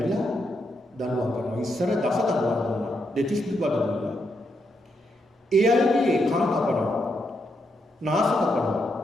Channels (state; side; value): normal; both; correlation 0.80